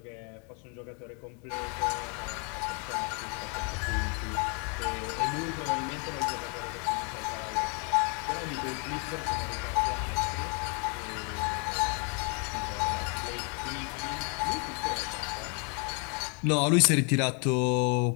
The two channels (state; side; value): quieter; right; 36.3 dB